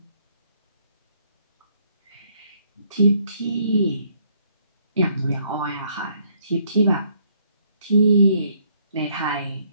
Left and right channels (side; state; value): both; inverted; correlation -0.68